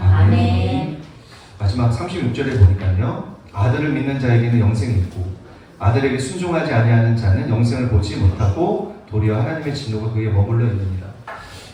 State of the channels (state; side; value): identical; both; correlation 1.00